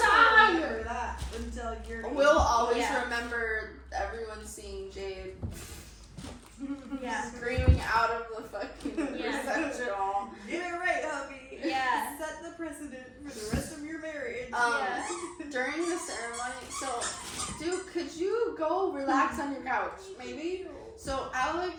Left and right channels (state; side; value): identical; both; correlation 1.00